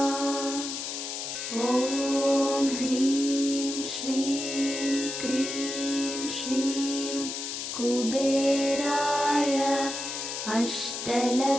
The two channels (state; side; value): noise; left; hiss, 5 dB below the sound